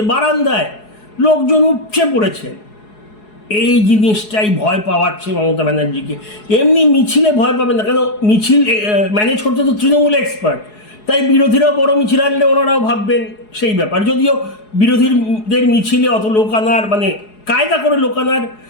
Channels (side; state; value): right; late; 4.7 ms